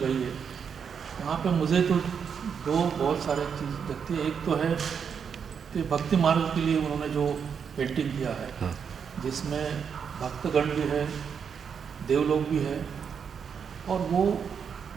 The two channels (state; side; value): quieter; left; 6.9 dB